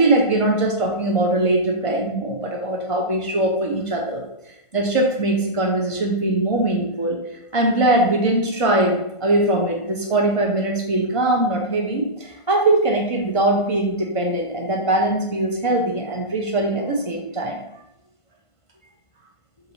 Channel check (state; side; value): late; right; 1.5 ms